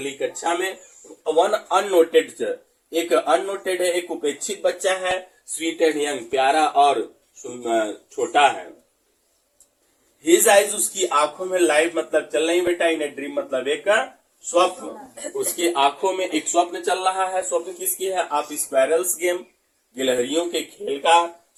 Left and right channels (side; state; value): both; identical; correlation 1.00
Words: कक्षा में। वन अननोटेड, एक अननोटेड है, एक उपेक्षित बच्चा है। स्वीट एंड यंग, प्यारा और छोटा है। हिज आइज, उसकी आंखों में, लाइव मतलब चल रही बेटा, इन ए ड्रीम मतलब एक स्वप्न, उसकी आंखों में एक स्वप्न चल रहा है। स्वप्न किसकी है? आप स्क्वायरल्स गेम, गिलहरियों के खेल का